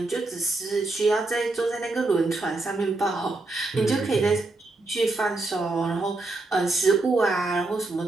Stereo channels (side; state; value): left; quieter; 3.1 dB